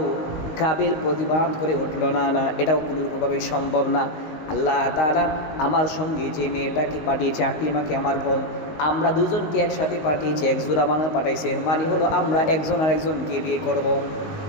কাবিল প্রতিবাদ করে উঠল, না না, এটাও কোনোভাবেই সম্ভব না। আল্লাহ তাআলা আমার সঙ্গে যে মেয়েটাকে পাঠিয়েছে আকলিমাকে, আমার বোন, আমরা দুজনকে একসাথে পাঠিয়েছে, এক জোড়া বানা পাঠাইছেন, মানে হলো আমরা একজন আরেকজনকে বিয়ে করব।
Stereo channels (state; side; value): late; right; 19 ms